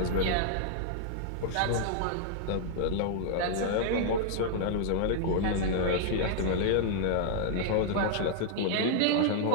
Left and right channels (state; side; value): different; both; correlation -0.01